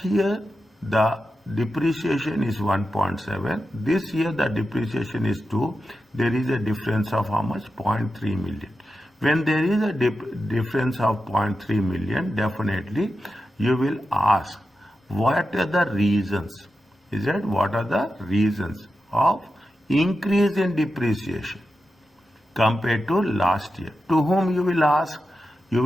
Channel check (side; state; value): both; normal; correlation 0.91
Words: year the depreciation is 1.7. This year the depreciation is 2. There is a difference of how much? 0.3 million. When there is a difference of 0.3 million, definitely you will ask, what are the reasons? Is that what are the reasons of increase in depreciation compared to last year? To whom you will ask? You